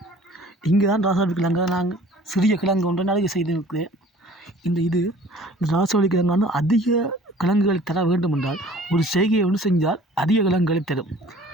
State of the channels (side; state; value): both; normal; correlation 0.50